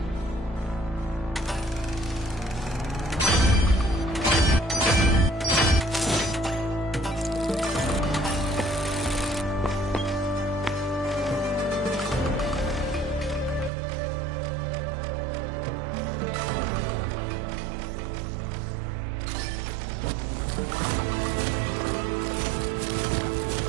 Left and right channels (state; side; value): drops out; left; at 13.7 s